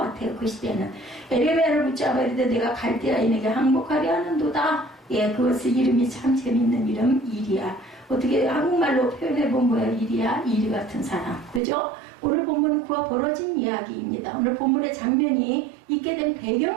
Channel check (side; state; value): left; drops out; at 11.6 s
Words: 그 시대는. 예레미야를 붙잡아 이르되 내가 갈대아인에게 항복하려 하는도다. 그것의 이름이 참 재밌는 이름 이리야. 어떻게 한국말로 표현해본 거예요? 이리야, 이리 같은 사람. 그죠? 오늘 본문은 그와 벌어진 이야기입니다. 오늘 본문의 장면이 있게 된